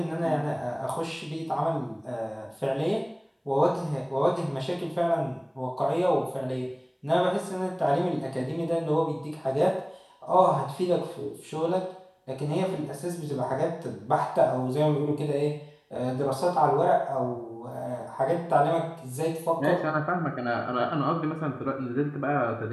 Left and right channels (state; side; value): identical; both; correlation 1.00